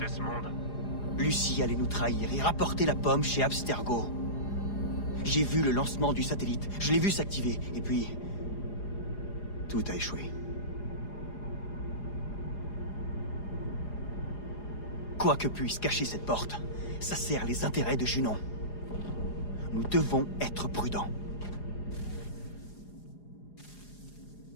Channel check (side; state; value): right; late; 4.9 ms